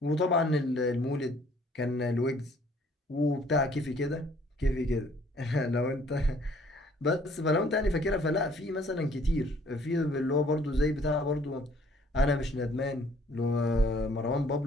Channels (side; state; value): both; normal; correlation 0.59